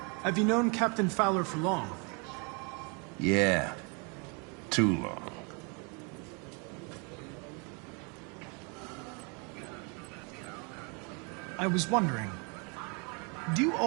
Have you known Captain Fowler for long? Yeah. Too long. I was wondering, do you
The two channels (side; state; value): left; quieter; 34.1 dB